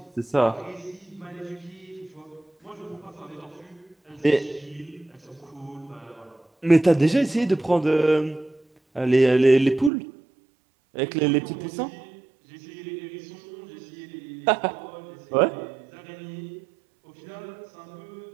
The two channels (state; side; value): drops out; left; at 9.9 s